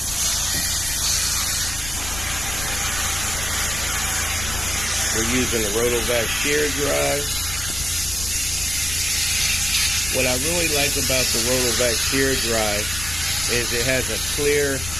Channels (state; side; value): noise; left; rumble, 10 dB below the sound